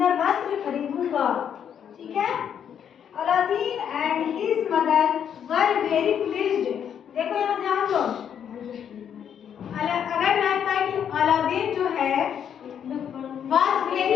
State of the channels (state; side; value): quieter; right; 8.6 dB